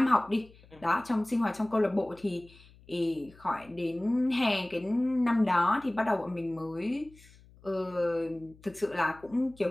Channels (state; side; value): noise; left; hum, 25 dB below the sound